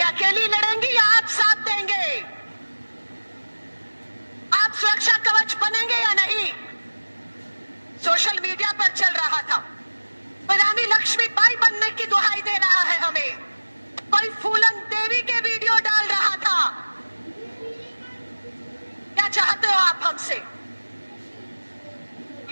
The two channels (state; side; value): inverted; both; correlation -1.00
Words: अकेली लड़ेंगी या आप साथ देंगे? आप सुरक्षा कवच बनेंगे या नहीं? सोशल मीडिया पर चल रहा था, कोई रानी लक्ष्मीबाई बनने की दुहाई दे रहा है हमें, कोई फूलन देवी के वीडियो डाल रहा था। क्या चाहते हो आप हमसे?